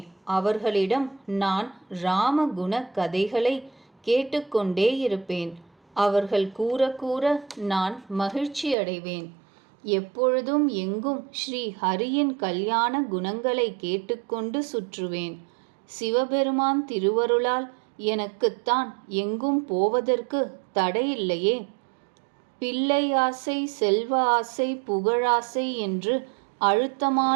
அவர்களிடம் நான் ராமகுண கதைகளை கேட்டுக்கொண்டே இருப்பேன். அவர்கள் கூற கூற நான் மகிழ்ச்சி அடைவேன். எப்பொழுதும் எங்கும் ஸ்ரீ ஹரியின் கல்யாண குணங்களை கேட்டுக்கொண்டு சுற்றுவேன். சிவபெருமான் திருவருளால் எனக்குத்தான் எங்கும் போவதற்கு தடையில்லையே. பிள்ளை ஆசை, செல்வ ஆசை, புகழாசை என்று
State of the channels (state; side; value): drops out; left; at 8.8 s